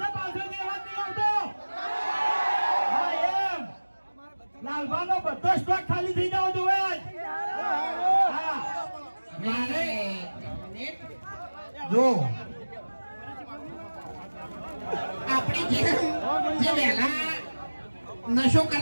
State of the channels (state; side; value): inverted; both; correlation -1.00